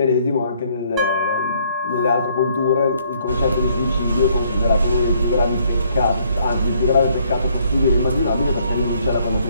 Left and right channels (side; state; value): both; inverted; correlation -0.66